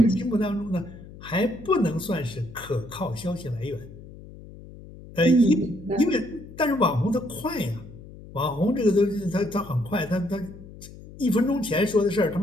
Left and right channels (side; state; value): left; noise; hum, 17 dB below the sound